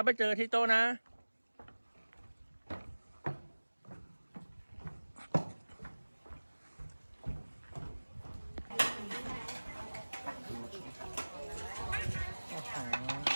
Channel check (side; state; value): both; inverted; correlation -1.00